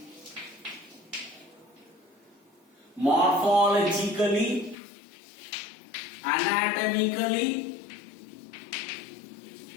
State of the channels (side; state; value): right; drops out; at 4.8 s